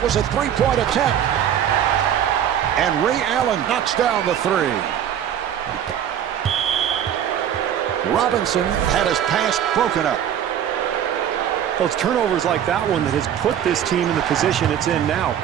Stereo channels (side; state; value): left; quieter; 9.7 dB